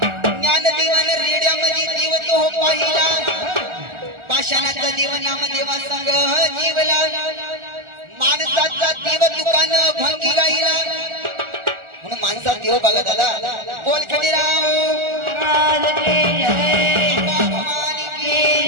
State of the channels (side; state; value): left; late; 1.4 ms